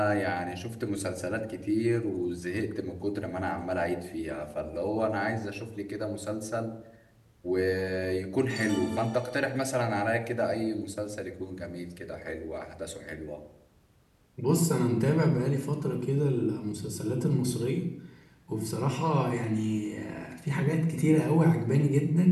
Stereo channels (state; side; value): identical; both; correlation 1.00